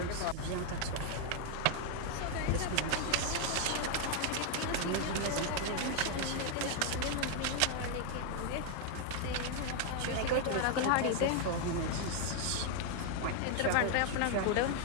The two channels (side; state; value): both; different; correlation 0.00